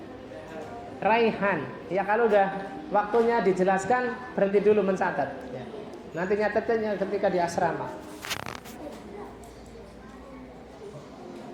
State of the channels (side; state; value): both; identical; correlation 1.00